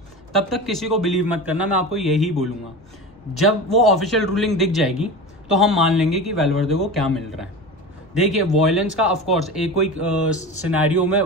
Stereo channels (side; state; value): left; noise; rumble, 28 dB below the sound